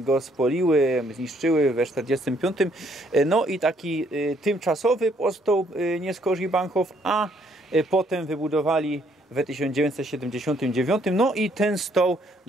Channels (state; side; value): normal; both; correlation 0.67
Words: spoliły, zniszczyły we 45, no i taki tymczasowy powstał nie skorzy Bahnhof, a potem wybudowali w 1979, no i ten stał